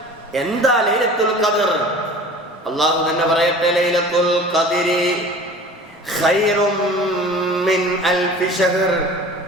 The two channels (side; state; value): both; normal; correlation 0.42